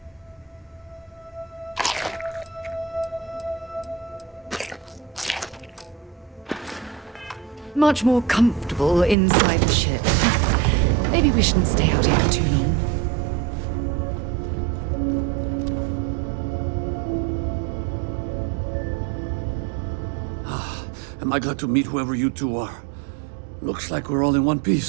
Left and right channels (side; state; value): left; drops out; at 9.2 s